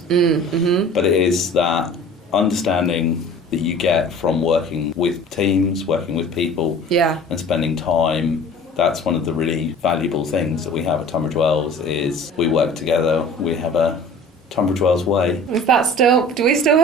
But it is that understanding that you get from working with teams, working with people, and spending time. That's one of the really valuable things that we have at Tunbridge Wells is we work together. We have a Tunbridge Wells way. Is that still? Do we still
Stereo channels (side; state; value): both; normal; correlation 0.44